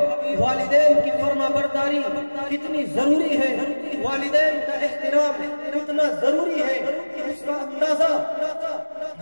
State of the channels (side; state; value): both; inverted; correlation -1.00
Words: والدین کی فرما برداری کتنی ضروری ہے، والدین کا احترام کتنا ضروری ہے، اس کا اندازہ